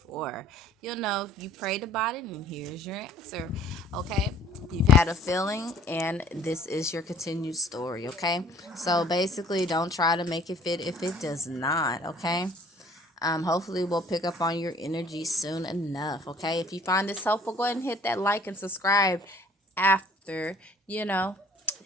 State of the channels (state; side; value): normal; both; correlation 0.55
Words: for. You'll know if you prayed about it, and here's your answer. Okay, you've had a feeling, and this is your continued story. Okay, so basically, don't try to make it fit if it does not. Okay. Hopefully we'll pick up on your energy soon enough. Okay. If you find this helpful, go ahead and hit that like and subscribe after, you know,